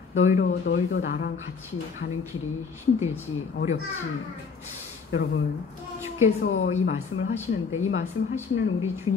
너희도 나랑 같이 가는 길이 힘들지, 어렵지. 여러분, 주께서 이 말씀을 하시는데 이 말씀을 하시는 우리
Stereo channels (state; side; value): quieter; right; 5.4 dB